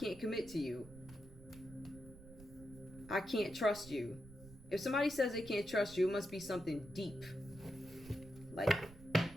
commit to you. I can't trust you. If somebody says they can't trust you, it must be something deep. Like,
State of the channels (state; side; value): noise; right; rumble, 18 dB below the sound